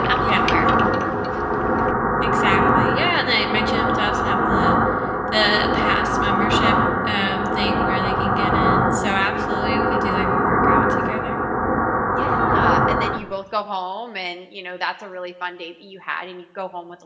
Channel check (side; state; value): both; identical; correlation 1.00